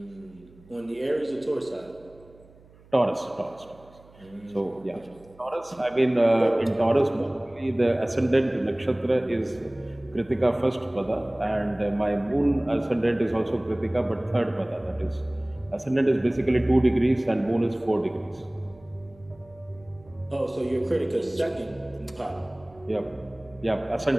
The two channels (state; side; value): noise; right; hum, 26 dB below the sound